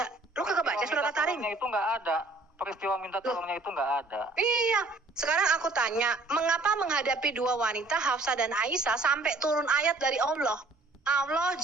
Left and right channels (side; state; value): left; quieter; 3.1 dB